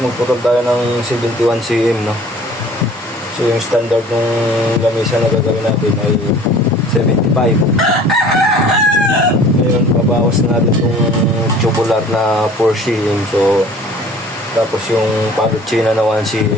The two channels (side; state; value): both; normal; correlation 0.48